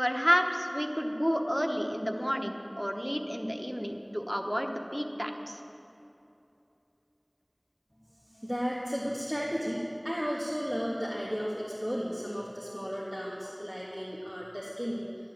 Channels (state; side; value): identical; both; correlation 1.00